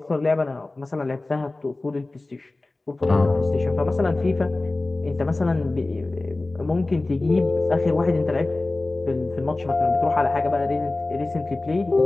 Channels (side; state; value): right; quieter; 3.0 dB